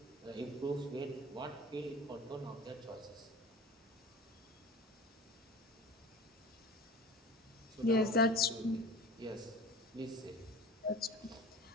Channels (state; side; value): normal; both; correlation 0.37